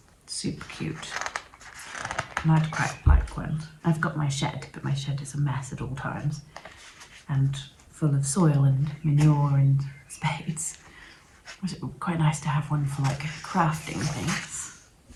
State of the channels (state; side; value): identical; both; correlation 1.00